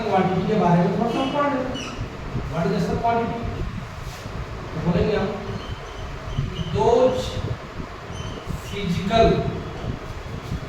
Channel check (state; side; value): identical; both; correlation 1.00